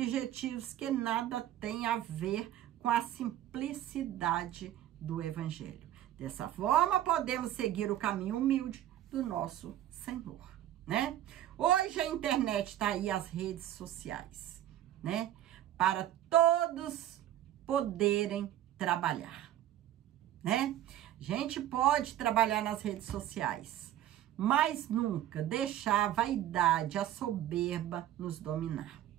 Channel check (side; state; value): left; quieter; 12.4 dB